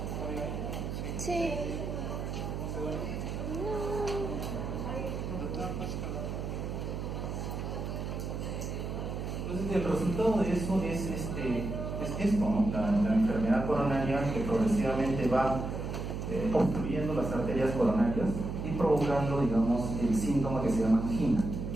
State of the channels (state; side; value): noise; right; hum, 4 dB below the sound